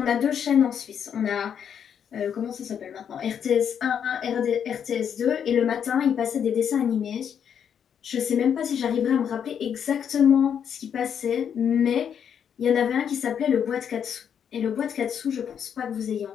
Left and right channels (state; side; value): quieter; right; 8.2 dB